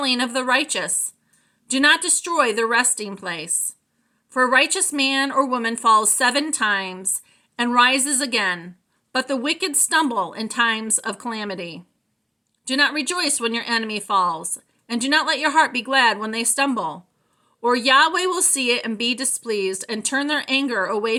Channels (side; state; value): both; identical; correlation 1.00